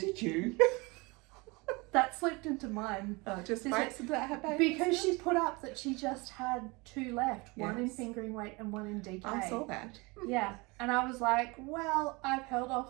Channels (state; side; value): quieter; left; 26.2 dB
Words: you? That slipped into mine. Just by accident, because she put up that she just had 2 left, one in Yes. fingering weight and one in DK. I saw that. Yeah, and I was like, well, I've held